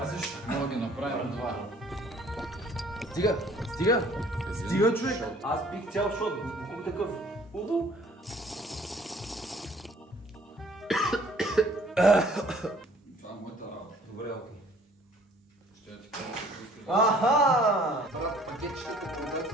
мога да ги направим два. Стига, човек! Аз пих цял шот. Колко такъв. Удо. Това е моята работа. Добре, окей. Ще я ти кажа, че искаш. Аха! Брат, пакетчетата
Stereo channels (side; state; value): both; normal; correlation 0.56